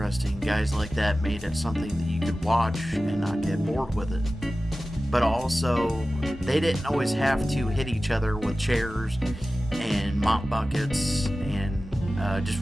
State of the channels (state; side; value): normal; both; correlation 0.95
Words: Guys like that made it something that you could watch and not get bored with it. But also, they didn't always have to hit each other with chairs and mop buckets and